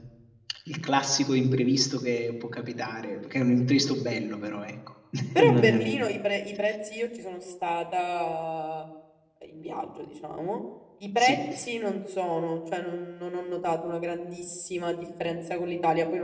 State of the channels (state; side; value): identical; both; correlation 1.00